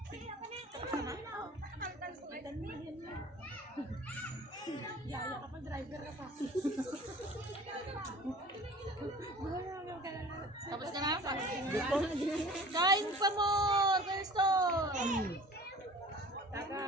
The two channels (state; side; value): normal; both; correlation 0.44